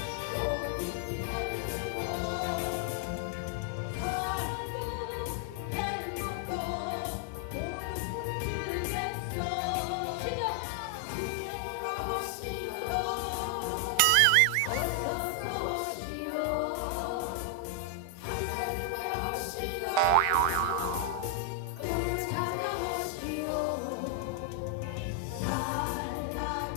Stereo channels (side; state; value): both; different; correlation 0.00